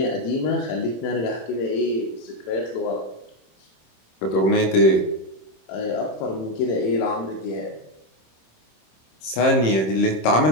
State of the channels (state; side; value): late; right; 26 ms